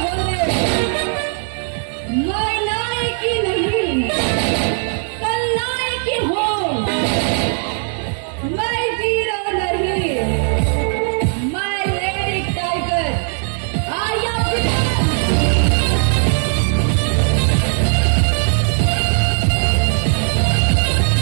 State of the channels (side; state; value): left; silent; 55 dB below the other